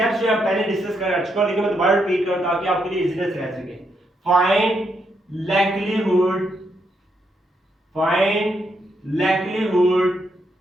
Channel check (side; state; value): both; normal; correlation 0.78